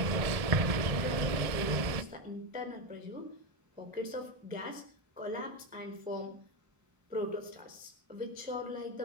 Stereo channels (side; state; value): left; late; 1.6 ms